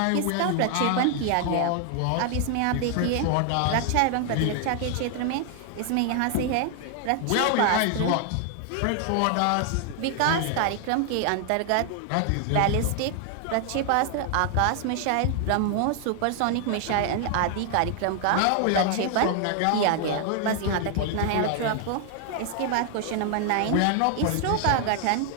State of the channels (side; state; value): both; different; correlation 0.00